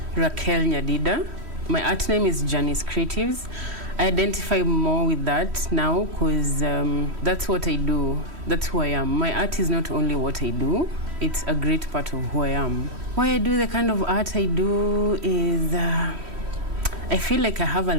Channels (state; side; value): late; left; 3.1 ms